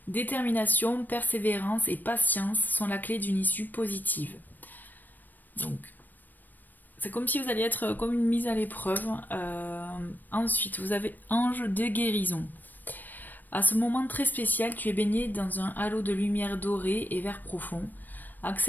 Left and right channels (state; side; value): late; right; 0.089 ms